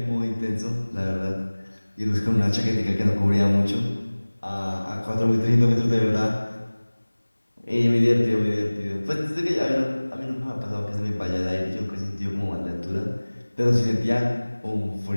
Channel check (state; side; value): inverted; both; correlation -1.00